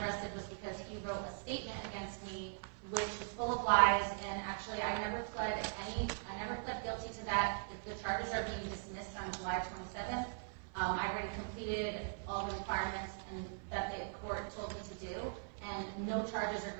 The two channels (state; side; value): silent; left; 51 dB below the other